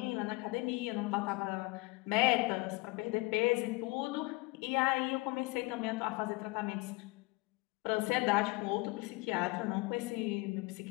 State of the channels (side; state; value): right; quieter; 24.7 dB